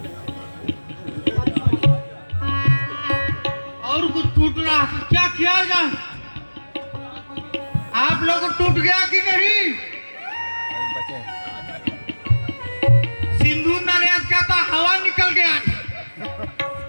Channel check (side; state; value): both; inverted; correlation -1.00